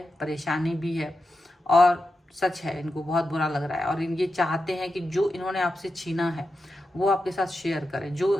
परेशानी भी है, और सच है इनको बहुत बुरा लग रहा है। और ये चाहते हैं कि जो इन्होंने आपसे छीना है वो आपके साथ शेयर करें, जो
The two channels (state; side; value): normal; both; correlation 0.89